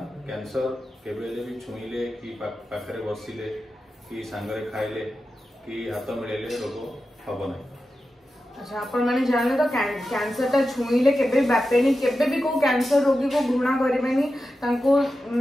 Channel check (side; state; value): both; normal; correlation 0.91